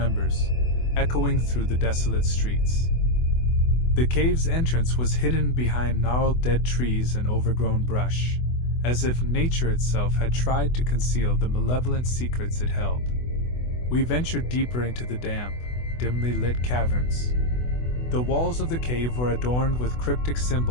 echoing through the desolate streets. The cave's entrance was hidden behind gnarled dead trees and overgrown brush, as if nature itself had tried to conceal the malevolent secrets it held. We ventured deeper into the damp, dimly lit caverns. The walls of the cave were adorned with cryptic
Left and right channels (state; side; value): late; right; 24 ms